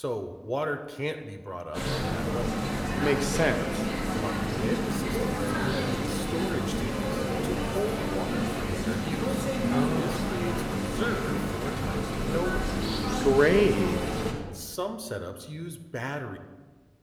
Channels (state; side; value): identical; both; correlation 1.00